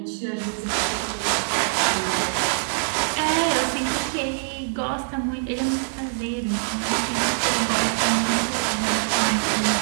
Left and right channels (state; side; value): silent; left; digital silence